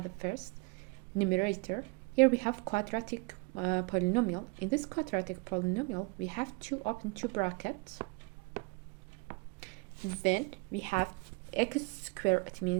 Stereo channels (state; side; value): quieter; left; 29.3 dB